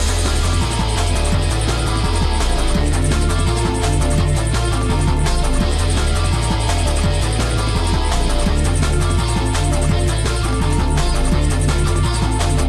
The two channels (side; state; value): both; identical; correlation 1.00